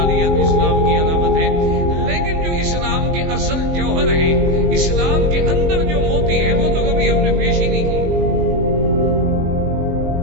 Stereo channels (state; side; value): late; left; 19 ms